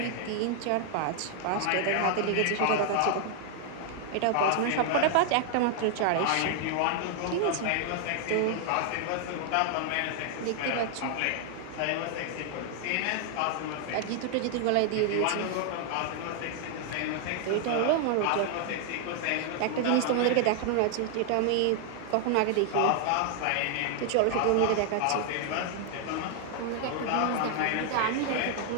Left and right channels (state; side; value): different; both; correlation 0.00